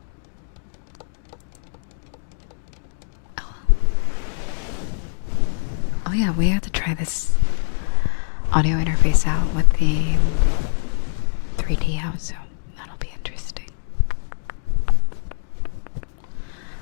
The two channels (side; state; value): right; silent; digital silence